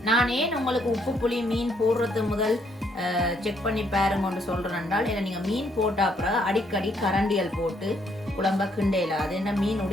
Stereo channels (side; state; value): both; normal; correlation 0.70